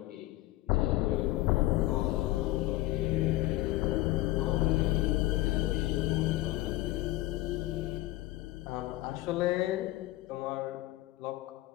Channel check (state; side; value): quieter; right; 17.4 dB